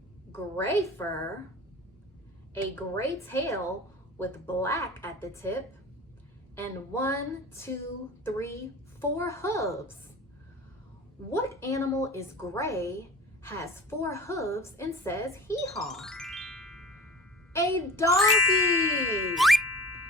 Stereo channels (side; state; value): both; normal; correlation 0.39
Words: gray fur, a gray tail with black at the tip, and 1, 2, 3, 4 hooves. What animal is gray, has 4 hooves, and says hee-haw? A donkey!